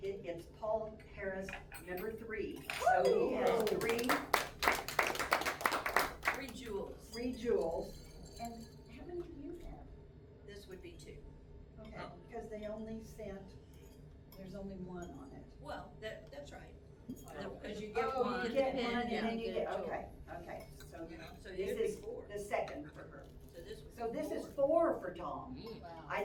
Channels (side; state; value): both; identical; correlation 1.00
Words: It's Paul Harris, number 3. So he has Three jewels. 3 jewels. And how many do you have? This would be 2. Okay, because they only sent, there's only 1 on it. Well, that's right. Because you get Oh, one. you get and one and then you get, a jewel. okay, so So this you'd be is 4. the second for her. So this would be So this is 4. 4 for Tom. Wow. I